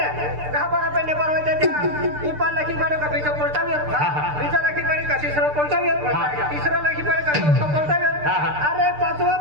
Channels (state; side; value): late; left; 6.7 ms